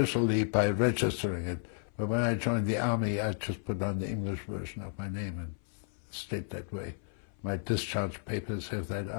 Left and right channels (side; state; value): right; silent; 56 dB below the other